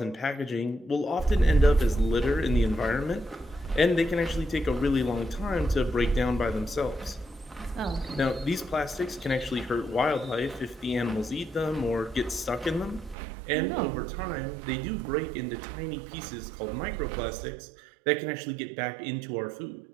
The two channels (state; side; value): drops out; left; at 13.2 s